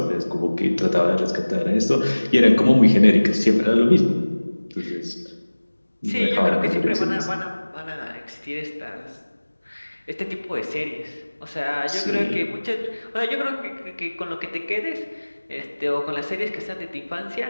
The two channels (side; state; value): both; inverted; correlation -1.00